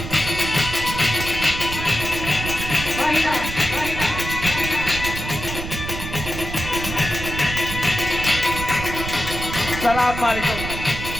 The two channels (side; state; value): right; noise; rumble, 7 dB below the sound